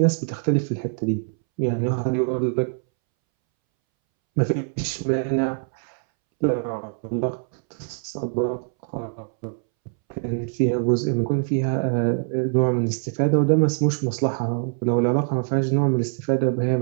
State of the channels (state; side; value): silent; left; 63 dB below the other